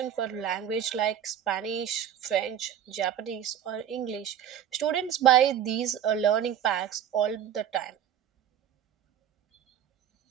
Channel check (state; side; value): quieter; left; 9.8 dB